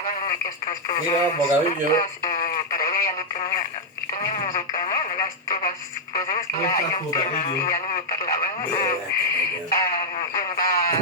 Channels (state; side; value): normal; both; correlation -0.02